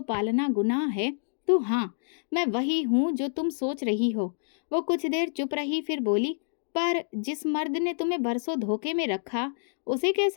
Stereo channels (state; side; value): silent; right; digital silence